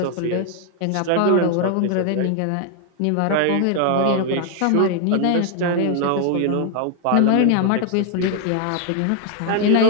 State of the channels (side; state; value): both; different; correlation 0.00